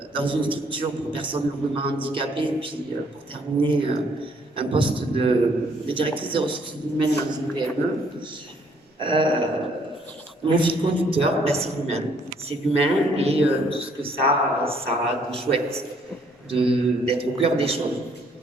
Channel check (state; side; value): normal; both; correlation 0.65